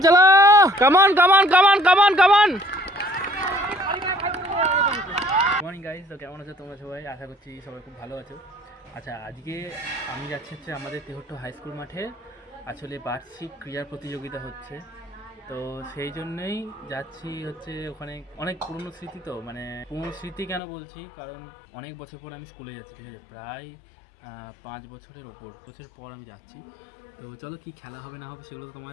চলো, কামান কামান কামান কামান কামান। মর্নিং গাইস, তো কেমন আছো তোমরা সবাই? আশা করছি সবাই খুব ভালো আছো। আচ্ছা, আজকে আমি যাচ্ছি হচ্ছে আমাদের তেহট্ট হাই স্কুল মাঠে, আসলে বার্ষিক ক্রীড়া প্রতিযোগিতা হচ্ছে, তো সেই জন্যই যাচ্ছি। হচ্ছে ওখানে অনেক পুরনো স্মৃতি, তো মানে পুরনো স্মৃতি কেন বলছি, কারণ অনেক বছর পর আমি স্কুলে যাচ্ছি, ঠিক আছে, প্রায় 5 বছরের বছর পর আমি যাচ্ছি। তো চলো কি খেলা হবে না হবে সেগুলো তো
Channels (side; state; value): right; drops out; at 20.6 s